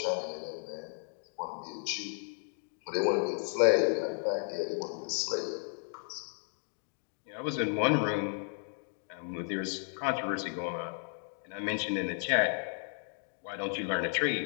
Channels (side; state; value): right; silent; 55 dB below the other